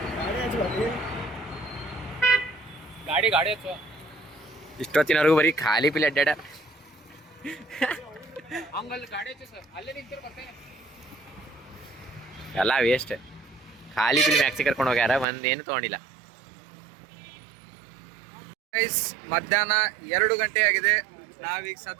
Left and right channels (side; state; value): left; drops out; at 15.2 s